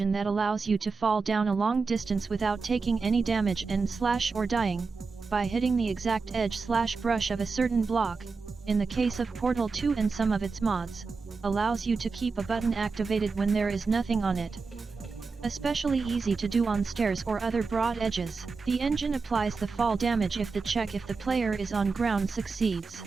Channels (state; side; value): quieter; left; 4.5 dB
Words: that allows you to fall down a long distance without taking any damage and slash or dying, by hitting the exact edge/brush of a certain block. In the case of Portal 2 and some of its mods, allows you to keep a button activated when there is nothing on it. Especially easy to do on stairs or other broad edges. The engine applies the fall damage if the check if the player is on ground succeeds.